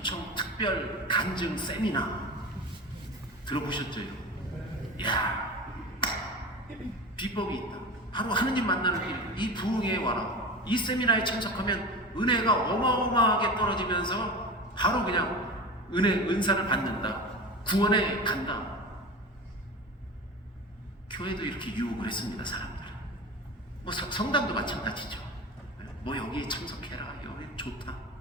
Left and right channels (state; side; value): normal; both; correlation 0.29